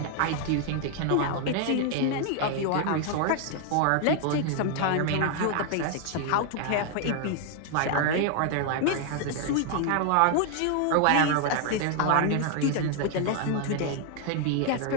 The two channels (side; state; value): both; different; correlation 0.00